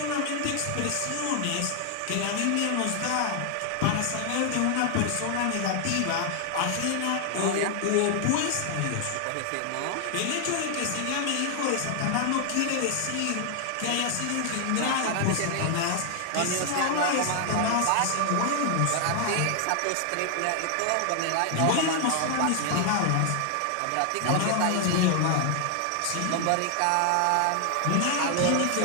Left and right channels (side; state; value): both; different; correlation 0.00